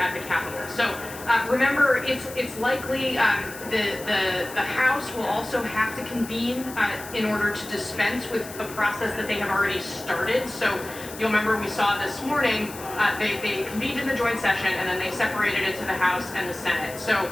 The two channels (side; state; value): left; noise; hiss, 14 dB below the sound